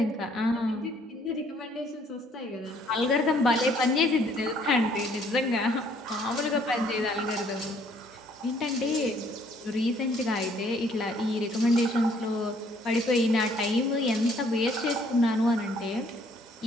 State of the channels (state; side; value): normal; both; correlation 0.63